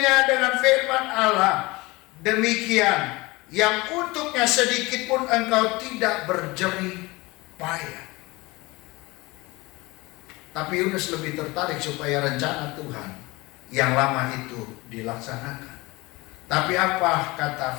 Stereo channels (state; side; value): quieter; right; 22.8 dB